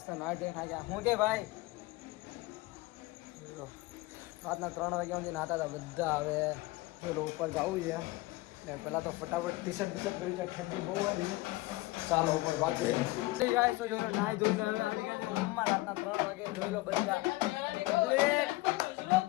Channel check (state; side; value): quieter; right; 20.4 dB